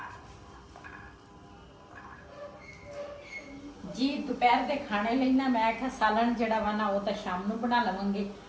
जी। दोपहर के खाने ਲਈ ਨਾ ਮੈਂ ਕਿਹਾ ਸਾਲਣ ਜਿਹੜਾ ਵਾ ਨਾ ਉਹ ਤਾਂ ਸ਼ਾਮ ਨੂੰ ਬਣਾ ਲਵਾਂਗੇ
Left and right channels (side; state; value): both; identical; correlation 1.00